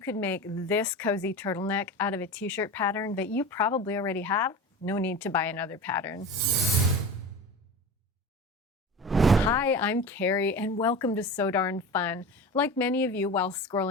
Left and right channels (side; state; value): both; normal; correlation 0.30